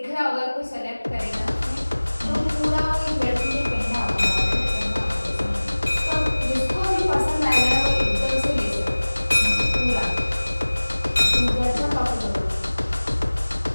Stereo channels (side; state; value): both; inverted; correlation -1.00